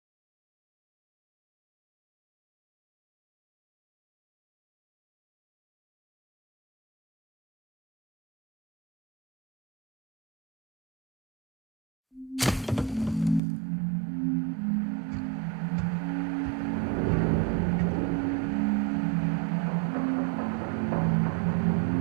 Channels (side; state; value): left; drops out; at 13.4 s